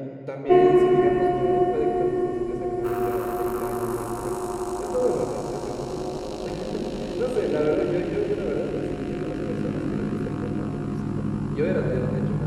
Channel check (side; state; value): both; identical; correlation 1.00